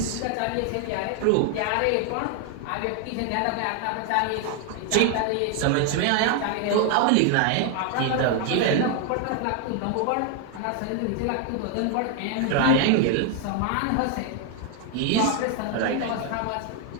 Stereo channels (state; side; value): different; both; correlation 0.00